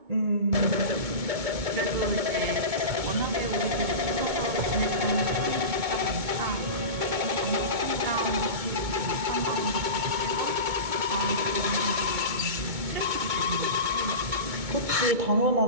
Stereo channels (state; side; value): late; left; 2.2 ms